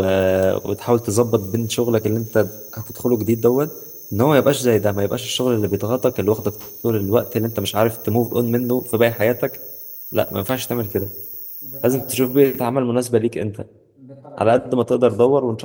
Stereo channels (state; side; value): identical; both; correlation 1.00